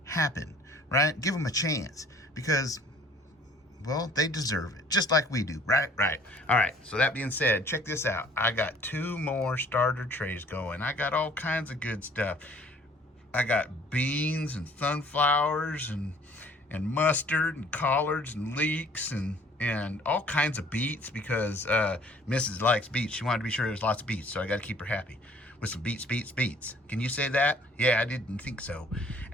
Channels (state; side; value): normal; both; correlation 0.55